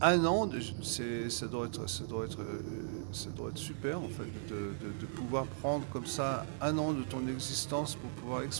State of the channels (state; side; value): silent; left; digital silence